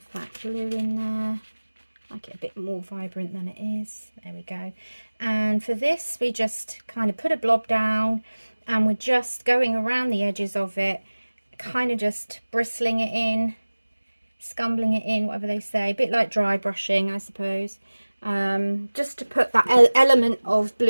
that blue in there, make it a bit more vibrant than it is. There we go. And for this we just kind of put a blob down and we're just going around the edges of it, kind of just bristling it in, scumbling it in, whatever they say, a bit like dry brushing, I suppose, just to put that element of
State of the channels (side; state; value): both; inverted; correlation -1.00